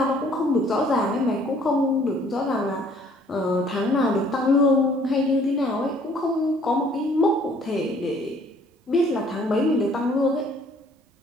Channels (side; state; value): both; normal; correlation 0.59